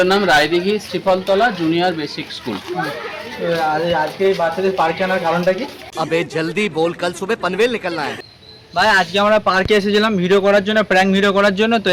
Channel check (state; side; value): identical; both; correlation 1.00